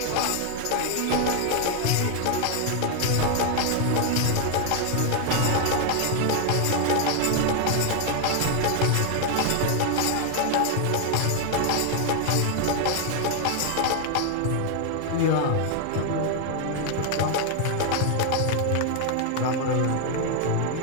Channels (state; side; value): different; both; correlation 0.00